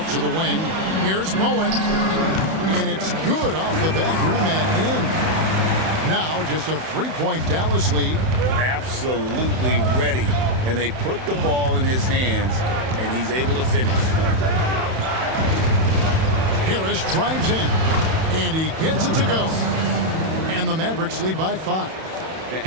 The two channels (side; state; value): left; late; 31 ms